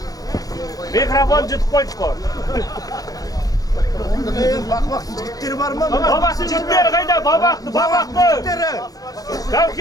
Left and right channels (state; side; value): late; right; 0.18 ms